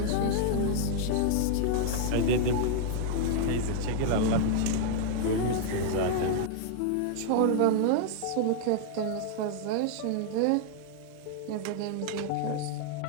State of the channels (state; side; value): different; both; correlation -0.01